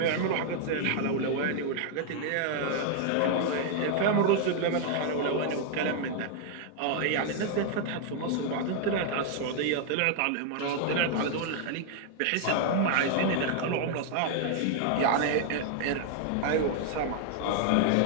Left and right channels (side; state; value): both; different; correlation 0.00